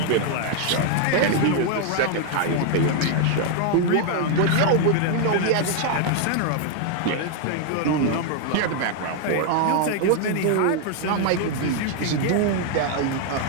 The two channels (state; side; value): different; both; correlation 0.00